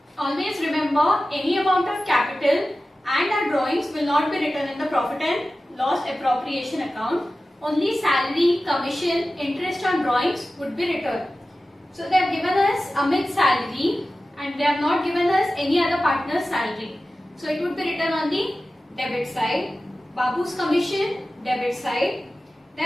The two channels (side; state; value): both; normal; correlation 0.95